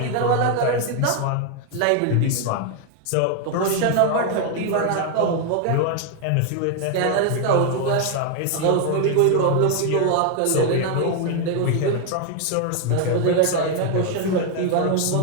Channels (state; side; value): different; both; correlation 0.01